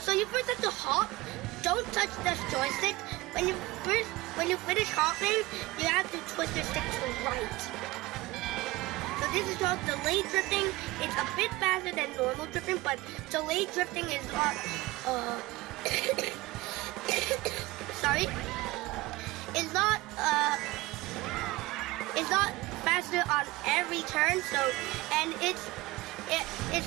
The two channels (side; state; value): left; quieter; 20.4 dB